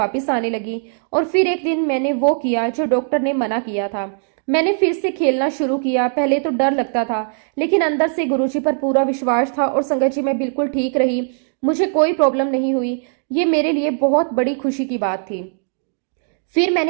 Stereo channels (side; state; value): left; silent; digital silence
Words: आने लगी। और फिर एक दिन मैंने वो किया जो डॉक्टर ने मना किया था। मैंने फिर से खेलना शुरू किया। पहले तो डर लगता था, लेकिन अंदर से गुरुजी पर पूरा विश्वास था। और संगत जी, मैं बिल्कुल ठीक रही, मुझे कोई प्रॉब्लम नहीं हुई। ये मेरे लिए बहुत बड़ी खुशी की बात थी। फिर